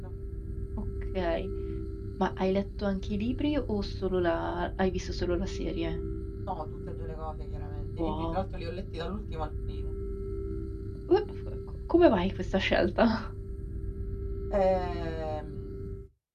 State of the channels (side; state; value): both; identical; correlation 1.00